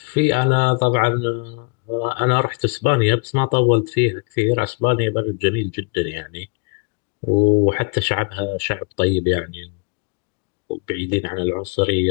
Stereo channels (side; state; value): right; quieter; 35.0 dB